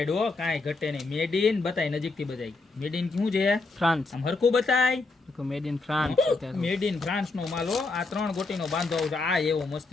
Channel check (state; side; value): quieter; right; 3.6 dB